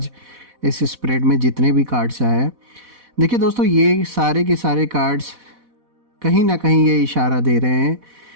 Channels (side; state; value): left; late; 4.1 ms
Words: इस स्प्रेड में जितने भी कार्ड्स आए हैं, देखिए दोस्तों ये सारे के सारे कार्ड्स कहीं ना कहीं ये इशारा दे रहे हैं